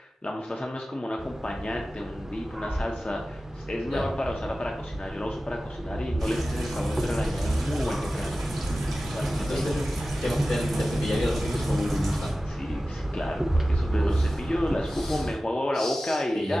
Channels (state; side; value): normal; both; correlation 0.95